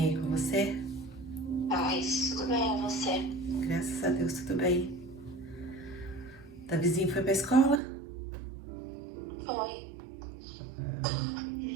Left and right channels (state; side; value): drops out; left; at 7.8 s